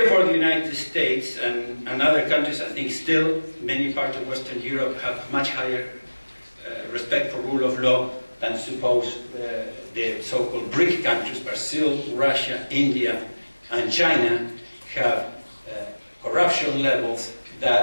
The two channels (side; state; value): both; inverted; correlation -1.00